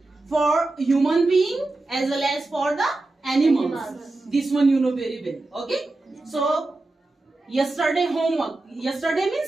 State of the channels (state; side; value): quieter; left; 3.0 dB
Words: for human being as well as for the animals. This one you know very well. Okay. So yesterday homework. Yesterday